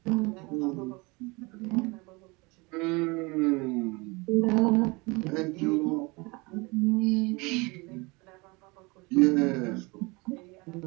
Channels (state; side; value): quieter; left; 26.2 dB